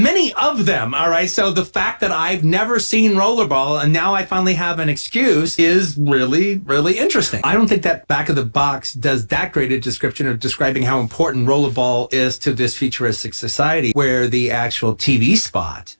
of them, all right? So the fact that I've never seen Rollerball and now I finally have an excuse is really, really interesting. I don't think that back of the box does that great a description of describing how important Rollerball is to this futuristic society, where the actual TV spot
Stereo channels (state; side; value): inverted; both; correlation -1.00